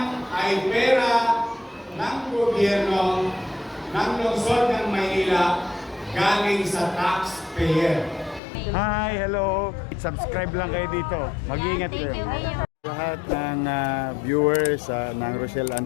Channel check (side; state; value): right; drops out; at 8.4 s